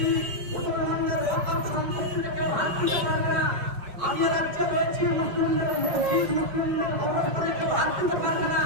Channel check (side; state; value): left; late; 5.1 ms